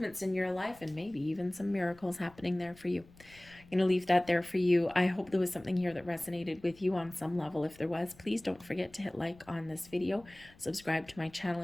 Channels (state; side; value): noise; left; rumble, 24 dB below the sound